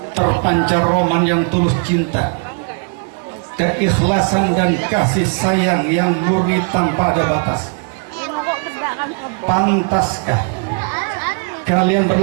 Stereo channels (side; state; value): left; quieter; 39.1 dB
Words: terpancar roman yang tulus cinta, keikhlasan dan kasih sayang yang murni tanpa ada batas. Pantaskah kalian